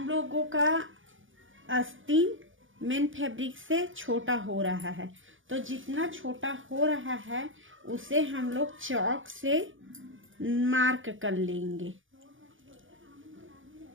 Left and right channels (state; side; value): late; left; 0.57 ms